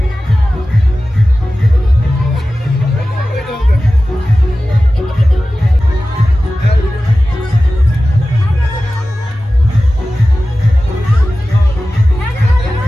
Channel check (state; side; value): normal; both; correlation 0.95